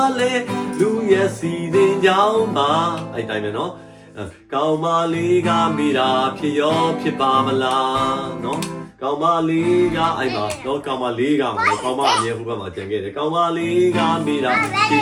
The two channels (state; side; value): identical; both; correlation 1.00